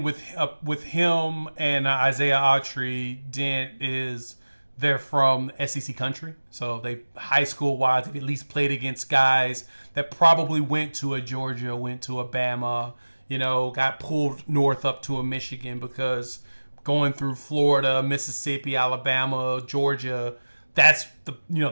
with him and Isaiah Autry Dent is they're from SEC country, so they high school wise they've at least played against guys that probably went to a Georgia, went to a Bama, got pulled north up to a Michigan, because going through Florida, Mississippi, Alabama, Georgia, that's the the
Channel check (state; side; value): inverted; both; correlation -1.00